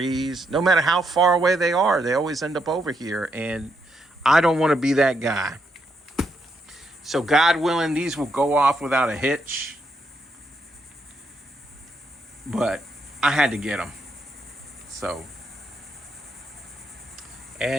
No matter how far away they are, they always end up over here. And I don't want to be that guy. So God willing, these will go off without a hitch. But I had to get them. So,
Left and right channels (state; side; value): normal; both; correlation 0.78